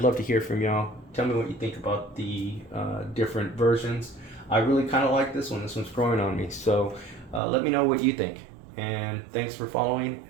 love to hear from y'all. Tell me what you think about the different versions. I really kind of like this one. This one's growing on me, so let me know what you think. And thanks for following,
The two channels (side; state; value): left; drops out; at 7.4 s